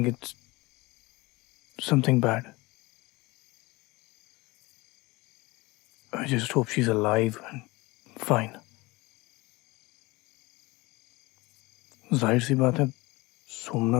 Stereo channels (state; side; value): quieter; right; 22.7 dB